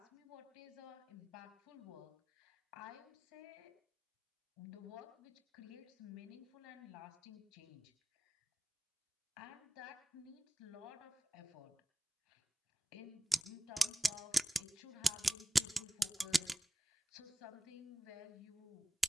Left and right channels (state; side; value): normal; both; correlation 0.95